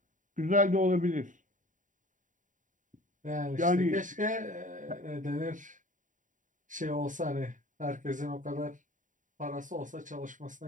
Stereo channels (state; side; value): late; left; 0.37 ms